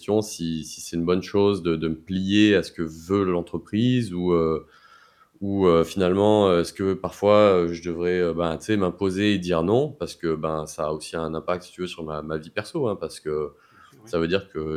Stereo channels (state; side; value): identical; both; correlation 1.00